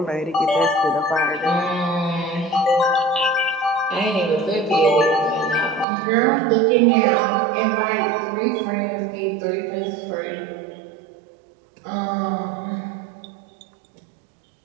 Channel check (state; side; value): drops out; left; at 5.9 s